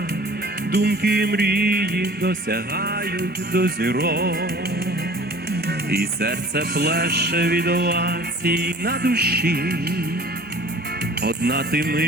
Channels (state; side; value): normal; both; correlation 0.47